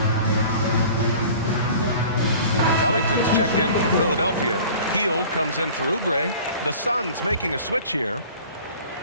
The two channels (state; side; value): inverted; both; correlation -0.45